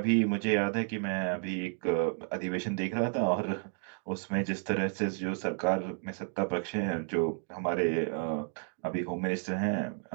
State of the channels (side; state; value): left; silent; 57 dB below the other